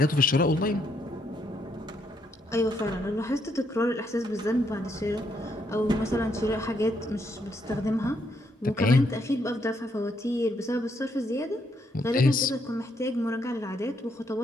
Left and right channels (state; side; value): normal; both; correlation 0.74